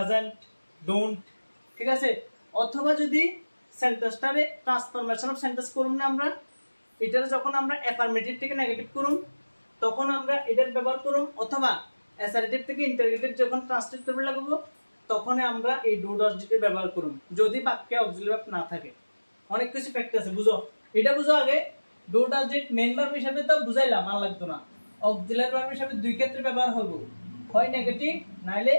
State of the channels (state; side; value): inverted; both; correlation -1.00